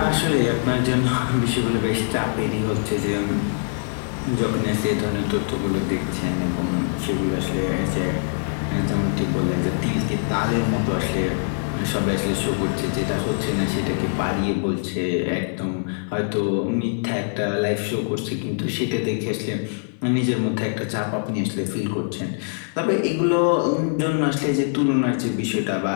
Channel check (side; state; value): right; silent; 57 dB below the other